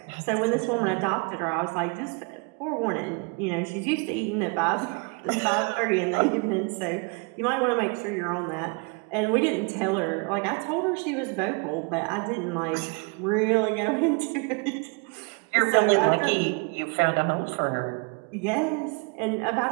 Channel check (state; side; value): quieter; left; 33.2 dB